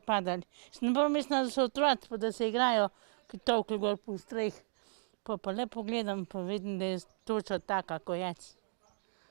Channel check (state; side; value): silent; left; digital silence